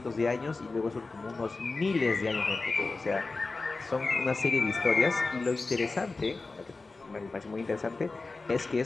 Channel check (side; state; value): right; quieter; 3.7 dB